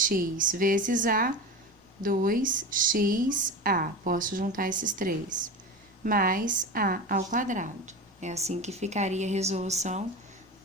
vezes a, 2xa. Posso juntar esses três. Mais a ao quadrado. É assim que ficaria a resolução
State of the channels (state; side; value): normal; both; correlation 0.26